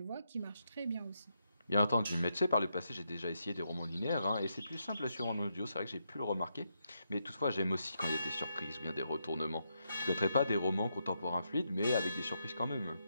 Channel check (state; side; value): inverted; both; correlation -0.82